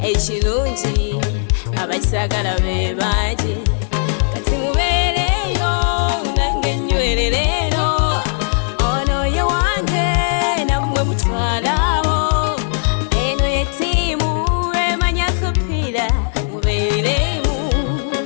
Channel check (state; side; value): silent; right; 66 dB below the other